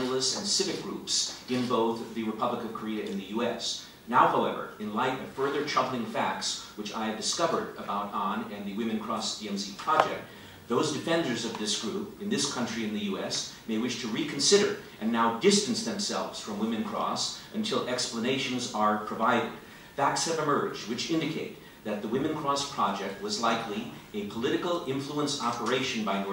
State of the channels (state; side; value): identical; both; correlation 1.00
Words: and civic groups in both the Republic of Korea and the US. Now, however, in light of further troubling facts which I have discovered about An and the Women Cross DMZ project, those defenders of this group in this country and the US may wish to reconsider and now distance themselves from Women Cross until explanations are provided. Facts have emerged which indicate that the Women Cross project was likely a political influence operation by